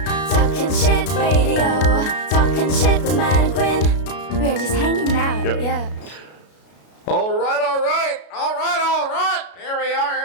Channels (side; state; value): right; late; 33 ms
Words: Talking shit radio. Talking shit with Matt and Quinn. We're just hanging out, yeah. All right. Here